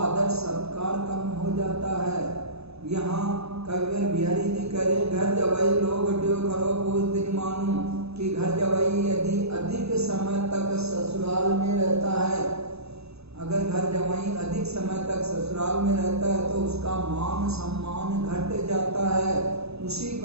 सत्कार कम हो जाता है। यहाँ कविवर बिहारी जी कह रहे, घर जवाई लोग घट्यो खरो पूस दिन मानू, कि घर जवाई यदि अधिक समय तक ससुराल में रहता है, अगर घर जवाई अधिक समय तक ससुराल में रहता है तो उसका मान सम्मान घट जाता है। उसी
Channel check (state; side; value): late; left; 0.79 ms